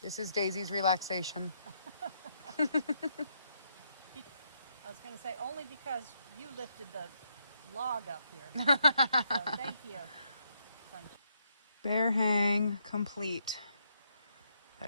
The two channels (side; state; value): both; inverted; correlation -0.76